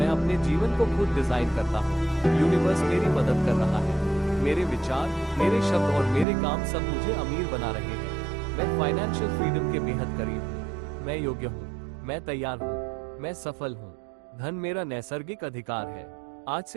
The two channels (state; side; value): drops out; left; at 6.2 s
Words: अपने जीवन को खुद डिजाइन करता हूँ। यूनिवर्स मेरी मदद कर रहा है। मेरे विचार, मेरे शब्द और मेरे काम सब मुझे अमीर बना रहे हैं। मैं फाइनेंशियल फ्रीडम के बेहद करीब हूँ। मैं योग्य हूँ। मैं तैयार हूँ। मैं सफल हूँ। धन मेरा नैसर्गिक अधिकार है। आज